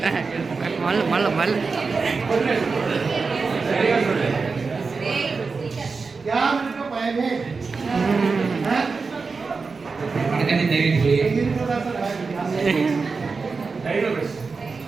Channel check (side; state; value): left; quieter; 4.6 dB